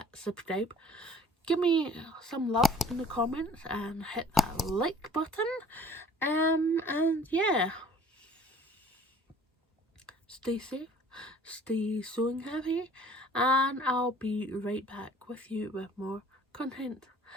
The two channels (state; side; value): normal; both; correlation 0.51